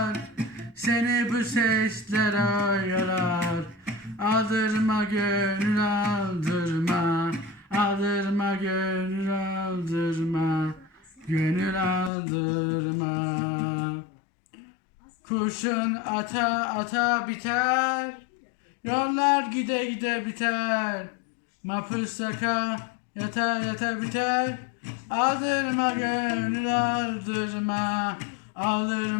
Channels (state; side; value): drops out; right; at 12.1 s